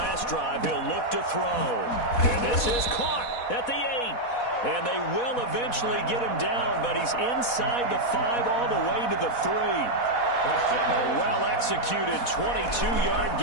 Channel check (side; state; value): right; late; 4.1 ms